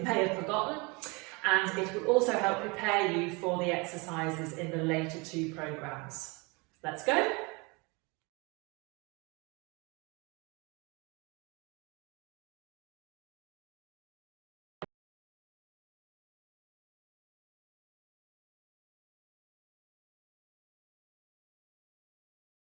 may have forgotten, and it will also help prepare you for the exercises in the later 2 programs. Let's go!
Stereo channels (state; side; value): quieter; left; 28.3 dB